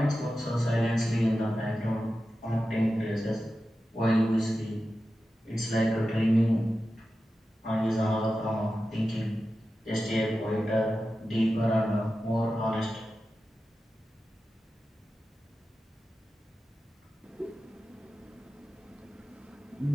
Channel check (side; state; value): both; normal; correlation 0.92